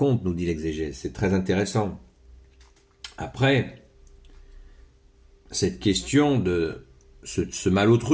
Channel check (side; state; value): both; identical; correlation 1.00